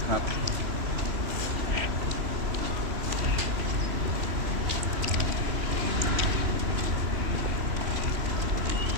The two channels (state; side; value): late; left; 3.1 ms